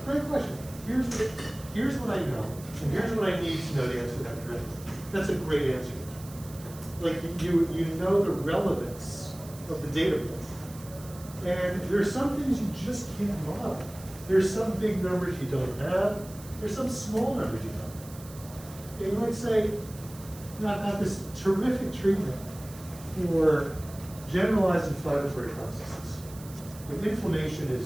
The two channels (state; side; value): noise; right; hiss, 18 dB below the sound